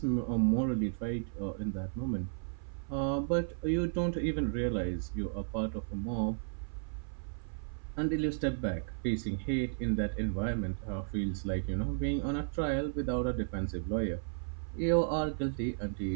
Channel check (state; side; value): silent; left; 55 dB below the other